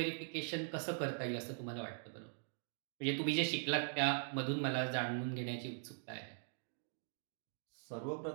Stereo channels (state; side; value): silent; left; digital silence